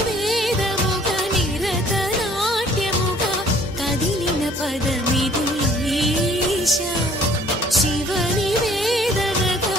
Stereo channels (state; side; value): normal; both; correlation 0.57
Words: వేదముగ నిరత నాట్యముగ కదిలిన పదమిది ఈశా శివని